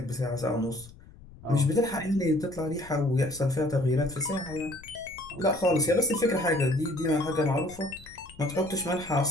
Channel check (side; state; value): left; noise; rumble, 20 dB below the sound